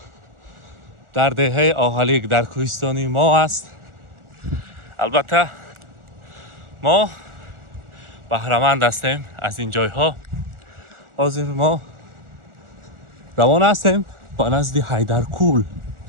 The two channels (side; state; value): left; late; 1.4 ms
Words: در دهه آهلیک در کوهستانی ما است. البته ما بهره‌مند هستیم از این جای ها. حاضر ما روانه هستیم با نزد حیدرکول.